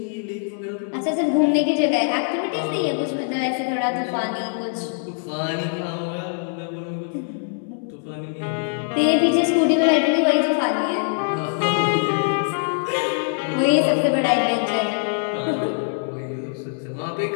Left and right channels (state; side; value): silent; right; 64 dB below the other